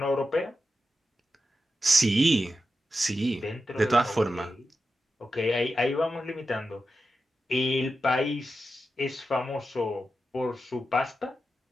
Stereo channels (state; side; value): normal; both; correlation 0.90